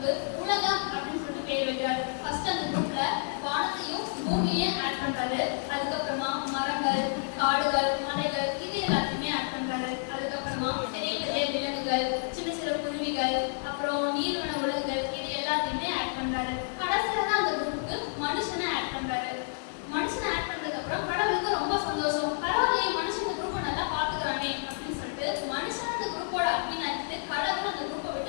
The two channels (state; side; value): silent; right; digital silence